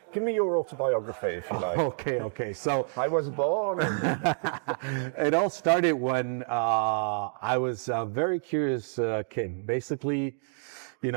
give me your autobiography if you like. Okay. So I was born. it all started when I was a very curious kid. Basically, you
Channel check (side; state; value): left; silent; digital silence